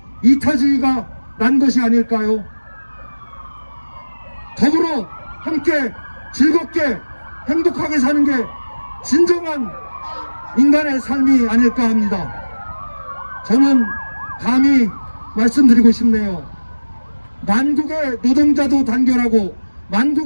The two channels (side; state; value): both; inverted; correlation -1.00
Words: 이타주의가 난 것이 아닐까요? 더불어 함께 즐겁게 행복하게 사는 게 진정한 인간의 삶이 아닐까 합니다. 저는 감히 말씀드리고 싶네요. 만국의 노동자도 단결하고